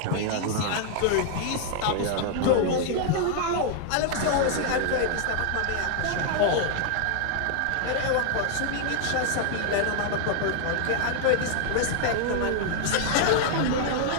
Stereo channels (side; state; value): both; different; correlation 0.00